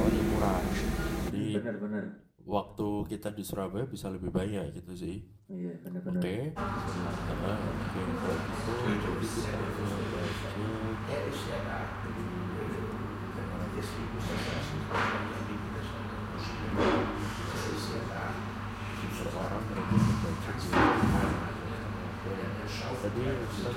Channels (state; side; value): identical; both; correlation 1.00